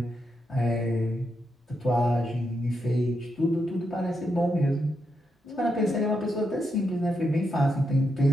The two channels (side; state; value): both; normal; correlation 0.83